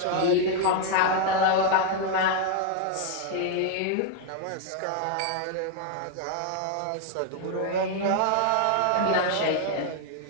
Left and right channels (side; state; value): both; different; correlation 0.00